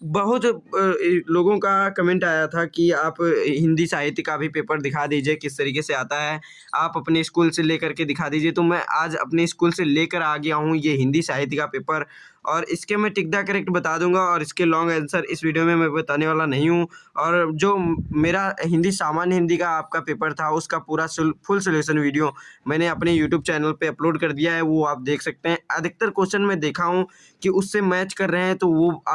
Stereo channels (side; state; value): both; identical; correlation 1.00